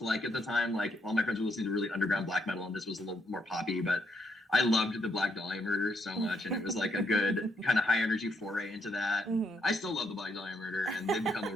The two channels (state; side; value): normal; both; correlation 0.75